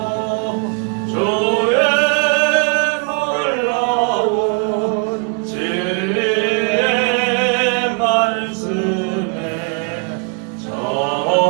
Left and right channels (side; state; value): left; quieter; 37.7 dB